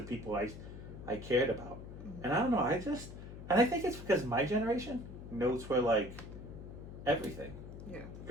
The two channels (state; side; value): noise; left; hum, 12 dB below the sound